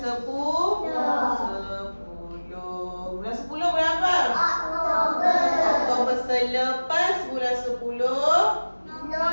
Bulan 10 bulan apa? Oktober. Selepas bulan 10.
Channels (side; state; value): both; inverted; correlation -1.00